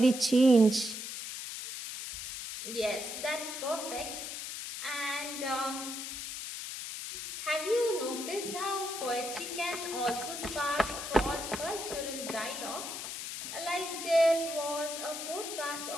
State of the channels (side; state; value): left; noise; hiss, 7 dB below the sound